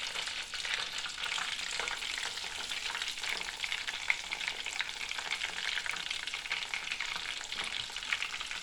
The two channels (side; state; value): both; identical; correlation 1.00